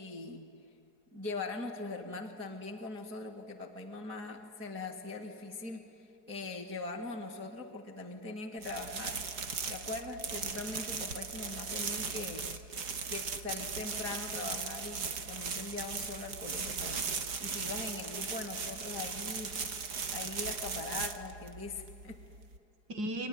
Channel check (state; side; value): late; left; 4.7 ms